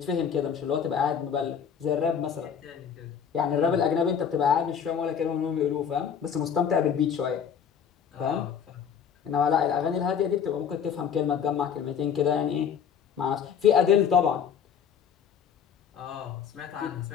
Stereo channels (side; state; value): right; quieter; 7.6 dB